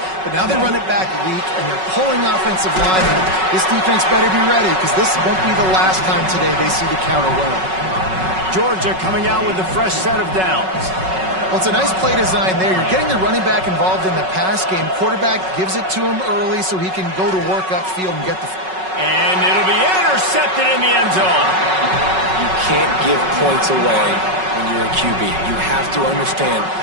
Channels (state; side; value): late; left; 5.4 ms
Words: but now they run it back weak, and they're pulling offensive linemen. This defense better be ready because this won't be the last time today they see the counter run. Georgia coming out with a fresh set of downs. Well, it's a nice play design there. You're getting the running back involved in the pass game. Quarterback gives it to him early so he can go to work upfield and get the... And it'll be intercepted in the end zone. You can't give points away when you're a QB. You have to understand,